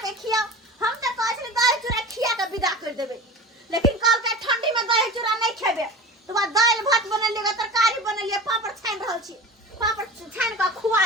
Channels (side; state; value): both; normal; correlation 0.34